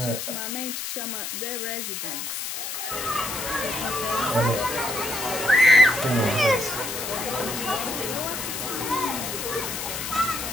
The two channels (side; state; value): left; noise; hiss, 5 dB below the sound